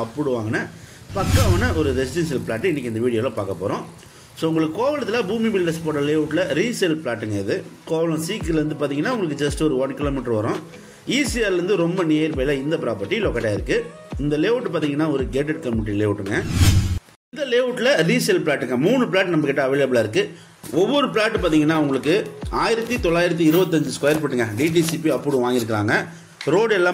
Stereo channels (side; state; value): both; identical; correlation 1.00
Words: அப்ரூவ் வாங்கின பக்காவான ஒரு ரெசிடென்ஷியல் பிளாட்டு இன்றைக்கி இந்த வீடியோவில் பார்க்க போகிறோம். ஸோ உங்களுக்கு கோவளத்தில் பூமி பில்டர்ஸ் போட்ட லேஅவுட்டில் ரீசேல் பிளாட்டுங்க. இது கோவளம் சீக்கிலேருந்து பார்த்தீங்கன்னா உங்களுக்கு ஜஸ்ட் ஒரு 1 கிலோமீட்டர் வரும். ஈசிஆர்லேருந்து ரொம்ப நியர்பையில் இந்த ப்ராப்பர்ட்டி லொக்கேட் ஆகிருக்கு. இந்த லேஅவுட் பார்த்தீங்கன்னா ஒரு கேட்டட் கம்யூனிட்டி லேஅவுட்டுங்க. இந்த லேஅவுட்டில் ரீசேல் பிளாட்டுங்க 3 பிளாட் நம்மக்கிட்ட அவைலபிளாக இருக்குது. ஒவ்வொரு பிளாட்டு பார்த்தீங்கன்னா உங்களுக்கு 1925 ஸ்கொயர் ஃபீட்டுங்க டிடிசிபி அப்ரூவ் வாங்கியிருக்காங்க. ரோடு